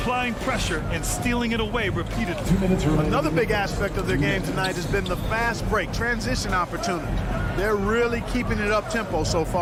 pressure and stealing it away repeatedly. Another big aspect of their game tonight has been the fast break, transition opportunities. They're really keeping it up-tempo so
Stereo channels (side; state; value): both; identical; correlation 1.00